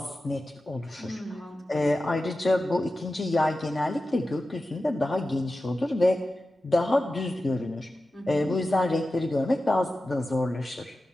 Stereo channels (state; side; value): normal; both; correlation 0.93